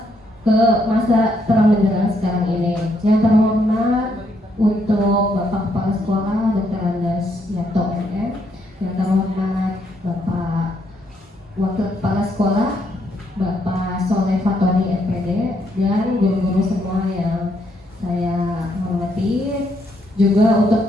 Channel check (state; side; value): normal; both; correlation 0.74